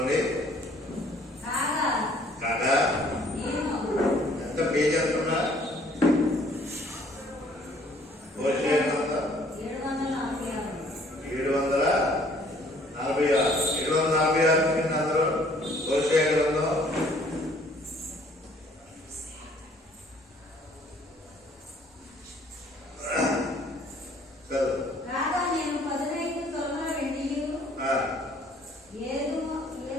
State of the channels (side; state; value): both; normal; correlation 0.59